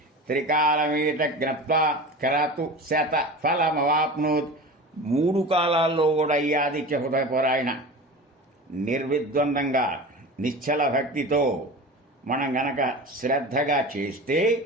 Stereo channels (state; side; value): normal; both; correlation 0.32